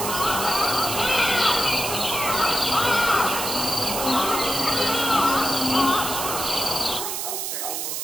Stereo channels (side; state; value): right; noise; hiss, 3 dB below the sound